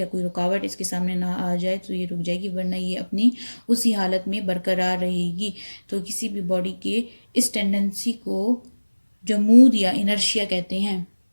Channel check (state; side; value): inverted; both; correlation -1.00